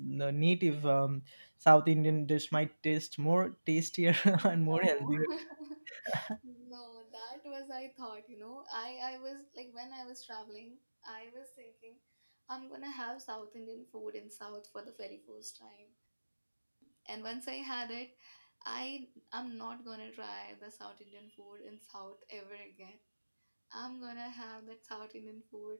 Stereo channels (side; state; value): both; inverted; correlation -1.00